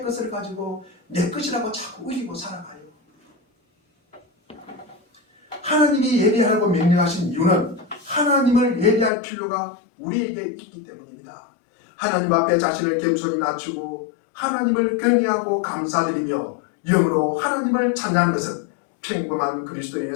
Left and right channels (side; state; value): right; drops out; at 9.1 s